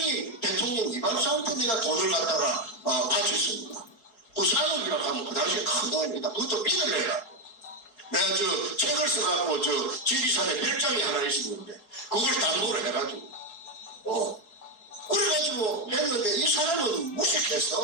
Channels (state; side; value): late; right; 4.7 ms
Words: 대통령 이발사한테 내가 돈을 갖다가 바쳤습니다. 그 산업이라고 하면 그 당시에 큰 돈입니다. 그것도 빚을 내라. 내가 책을 써갖고 지리산에 별장이 하나 있었는데 그걸 담보를 해가지고 그래가지고 했는데 이 사람은